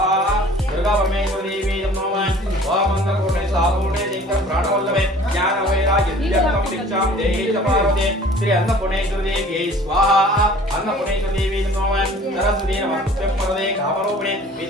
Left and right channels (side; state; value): both; normal; correlation 0.49